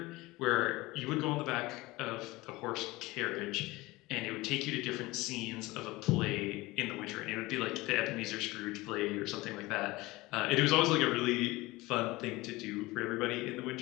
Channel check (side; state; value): right; quieter; 20.8 dB